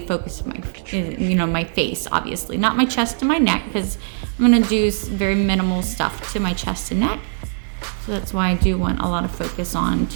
focus of my face, obviously, not my chest and my neck, because I'm gonna do very minimal stuff to my chest and neck. So that's why I do want a lot of focus on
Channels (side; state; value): left; silent; digital silence